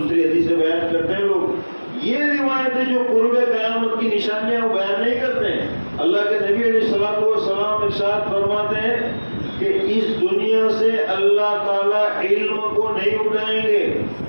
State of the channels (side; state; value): both; inverted; correlation -1.00